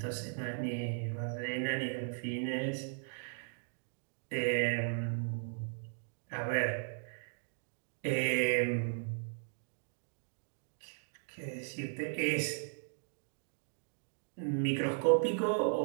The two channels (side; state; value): left; silent; digital silence